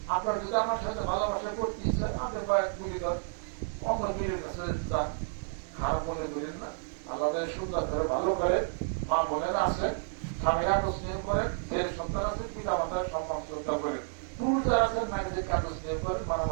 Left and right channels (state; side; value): silent; left; digital silence